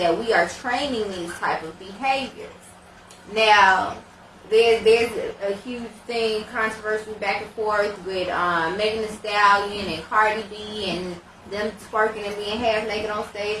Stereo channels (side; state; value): both; identical; correlation 1.00